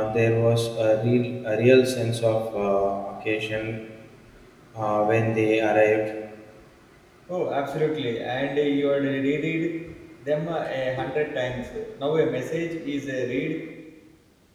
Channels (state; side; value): identical; both; correlation 1.00